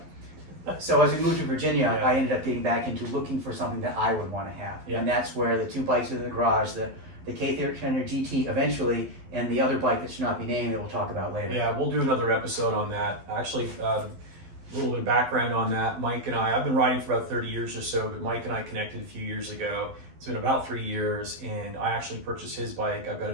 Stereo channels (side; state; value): left; late; 12 ms